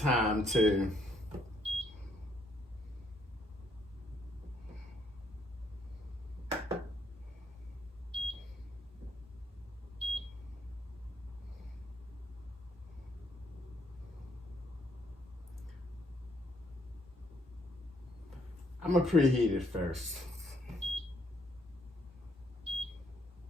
to I'm gonna preheat it first.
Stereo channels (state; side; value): normal; both; correlation 0.70